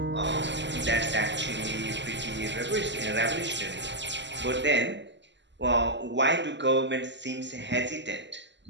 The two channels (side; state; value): left; late; 0.52 ms